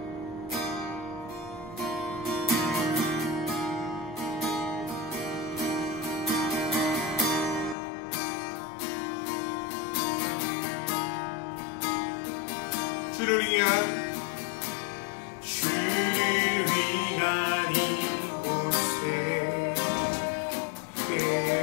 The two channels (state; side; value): drops out; right; at 7.8 s